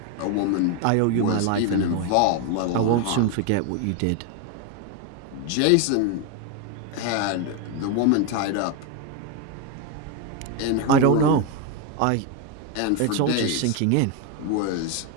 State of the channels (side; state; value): both; different; correlation 0.02